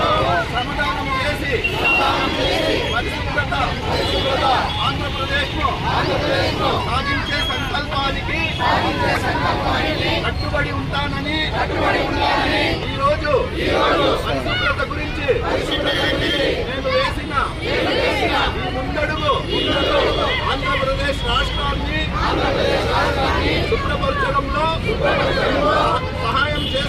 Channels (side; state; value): both; identical; correlation 1.00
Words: శ్రమదానం చేసి పరిశుభ్రత ఆంధ్రప్రదేశ్ సాధించే సంకల్పానికి కట్టుబడి ఉంటానని ఈరోజు పరిశుభ్రత గురించి నేను వేసిన ఈ ముందడుగు ఆంధ్రప్రదేశ్ రాష్ట్రాన్ని శుభ్రపరచడంలో సహాయం